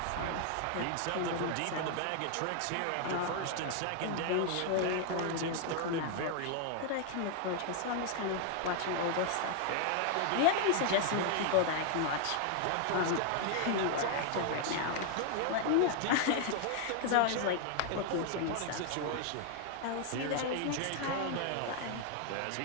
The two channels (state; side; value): different; both; correlation 0.00